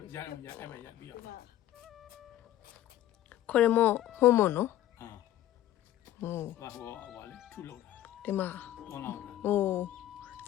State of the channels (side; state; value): right; quieter; 13.0 dB